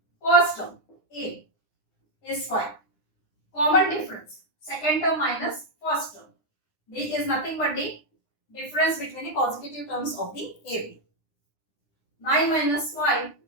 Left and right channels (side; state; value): right; late; 9.8 ms